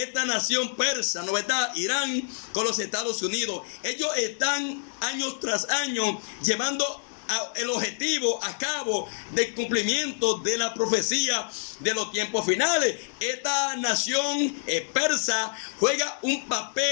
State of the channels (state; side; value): silent; right; digital silence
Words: esta nación persa, ¿no verdad? Irán con los Estados Unidos. Ellos están años tras año llevando el objetivo a cabo del cumplimiento de la profecía de los tiempos finales. Esta nación persa juega un